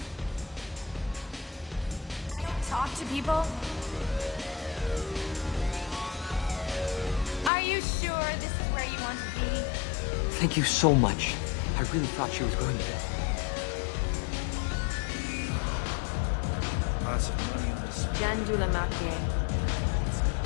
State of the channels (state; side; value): drops out; right; at 7.5 s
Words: Talk to people? Are you sure this is where you want to be? Thank you so much. I really thought she was going to die. Jandula Makye.